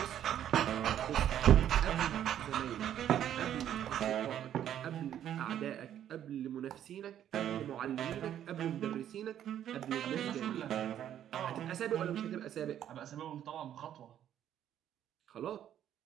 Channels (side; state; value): left; quieter; 10.6 dB